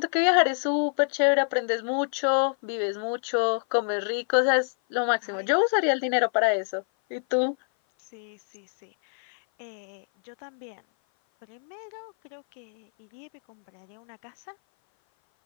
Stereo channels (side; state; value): right; silent; 56 dB below the other